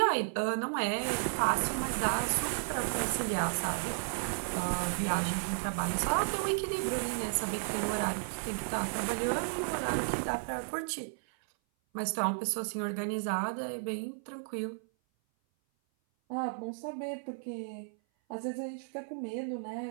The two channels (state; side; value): silent; left; 55 dB below the other